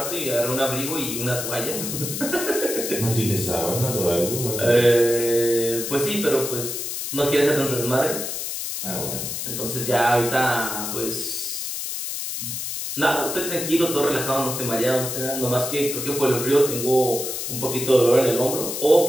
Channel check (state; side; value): noise; left; hiss, 4 dB below the sound